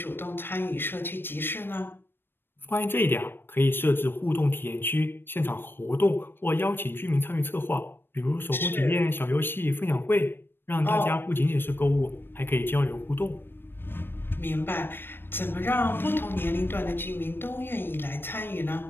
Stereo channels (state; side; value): late; right; 0.099 ms